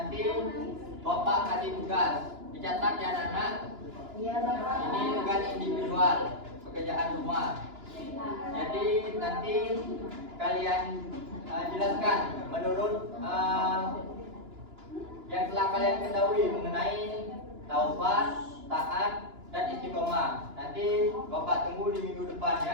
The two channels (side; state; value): left; late; 2.9 ms